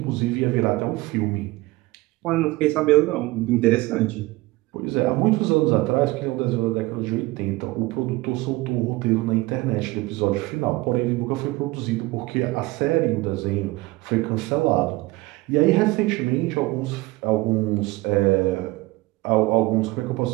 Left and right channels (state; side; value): quieter; left; 20.8 dB